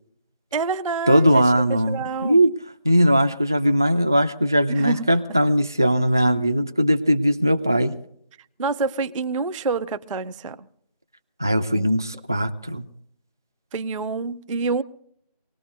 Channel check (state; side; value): inverted; both; correlation -0.84